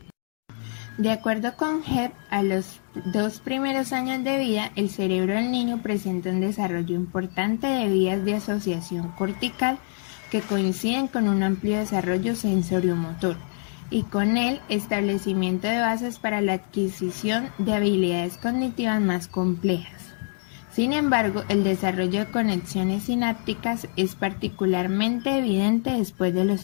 De acuerdo con Hebb, a los 2 primeros años de vida, el cerebro del niño presenta un desarrollo importante de vías de asociación cortical que coinciden con un amplio desarrollo sensoriomotor y con el establecimiento de bases para la adquisición de habilidades cognitivas más complejas. Sin embargo, el desarrollo de conexiones sinápticas es particularmente evidente después de los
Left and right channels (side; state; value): right; silent; 61 dB below the other